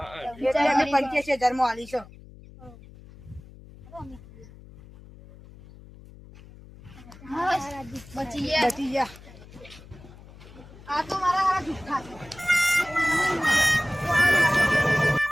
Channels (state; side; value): noise; left; hum, 20 dB below the sound